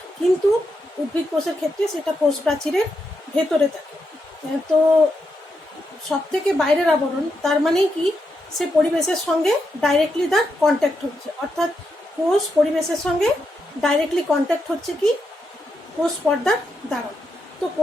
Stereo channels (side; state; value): both; normal; correlation 0.83